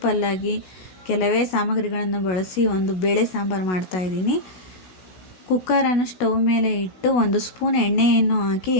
ಕೆಲವೇ ಸಾಮಗ್ರಿಗಳನ್ನು ಬಳಸಿ ಒಂದು ಬೇಳೆ ಸಾಂಬಾರು ಮಾಡ್ತಾಯಿದ್ದೀನಿ. ಕುಕ್ಕರನ್ನು ಸ್ಟವ್ ಮೇಲೆ ಇಟ್ಟು 1 ಸ್ಪೂನ್ ಎಣ್ಣೆಯನ್ನು ಹಾಕಿ,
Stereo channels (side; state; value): right; late; 16 ms